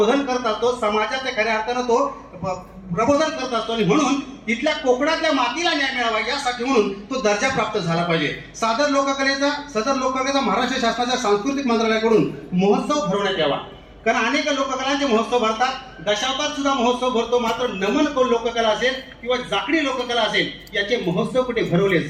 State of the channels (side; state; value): both; identical; correlation 1.00